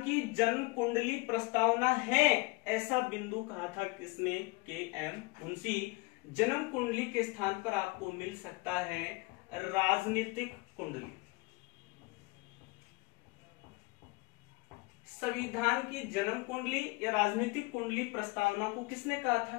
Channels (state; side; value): quieter; right; 25.8 dB